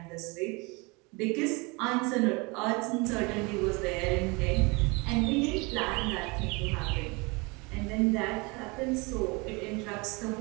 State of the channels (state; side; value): quieter; left; 27.4 dB